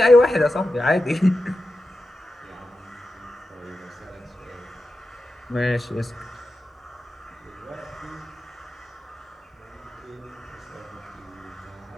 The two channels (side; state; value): both; normal; correlation 0.91